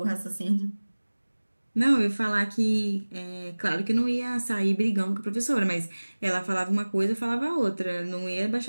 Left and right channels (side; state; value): both; inverted; correlation -1.00